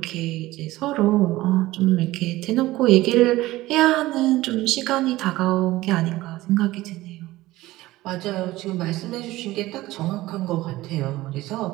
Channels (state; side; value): quieter; left; 17.6 dB